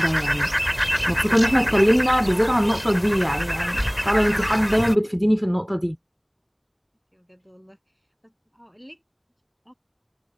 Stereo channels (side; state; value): both; identical; correlation 1.00